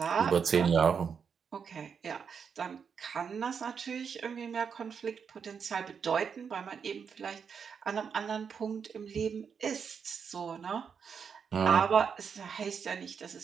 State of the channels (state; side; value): quieter; left; 6.6 dB